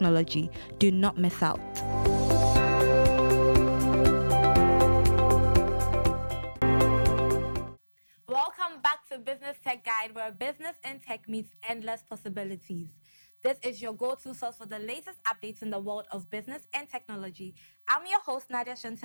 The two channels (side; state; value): both; inverted; correlation -1.00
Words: Do not miss out. Welcome back to Business Tech Guide, where business and tech meets endless possibilities. This is your go-to source for the latest updates in the world of business and technology. I'm your host, Nadia